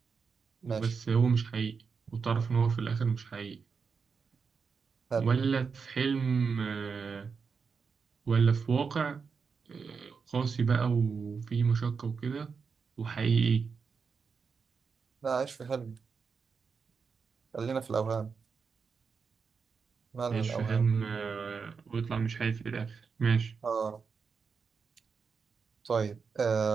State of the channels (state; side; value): quieter; left; 5.5 dB